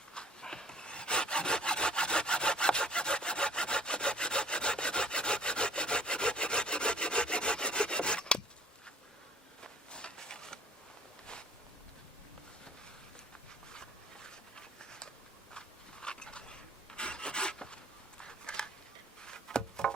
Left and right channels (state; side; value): normal; both; correlation 0.50